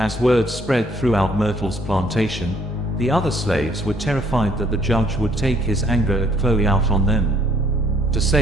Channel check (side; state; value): both; normal; correlation 0.64